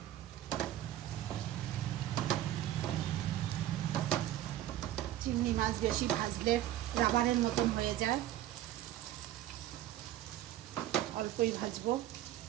চিংড়ি মাছ বেশি ভাজলে রাবারের মতন হয়ে যায়, অল্পই ভাজবো।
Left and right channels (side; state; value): left; quieter; 13.1 dB